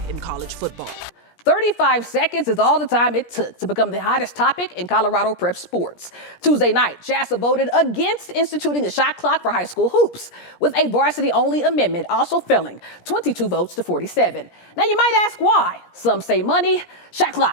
in college football. 35 seconds is all the time it took to become the hottest topic in Colorado prep sports. Tuesday night, JASA voted against instituting a shot clock for high school hoops, with a varsity-only amendment also failing, 22 votes to 47. Now you might ask why. Some say money. Shot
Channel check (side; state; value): right; late; 17 ms